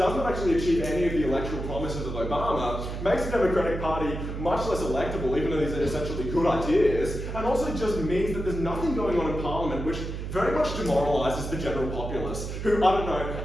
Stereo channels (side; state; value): right; noise; hum, 6 dB below the sound